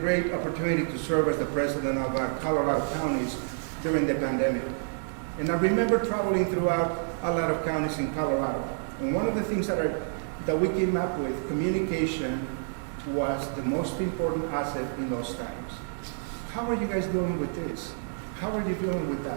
opportunity to serve as the president of Colorado counties during the pandemic. And I remember traveling throughout a lot of counties in Colorado. And one of the things that we came up with, communication was the most important asset in those times. How are you guys dealing with this? How are you dealing with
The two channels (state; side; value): silent; left; digital silence